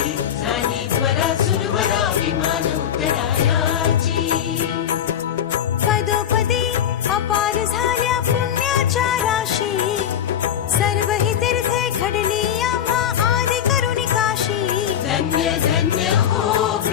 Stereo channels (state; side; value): quieter; right; 9.6 dB